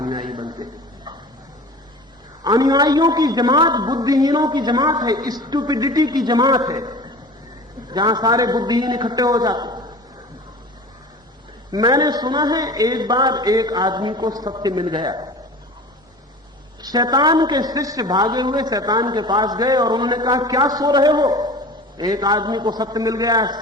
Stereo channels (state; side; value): normal; both; correlation 0.38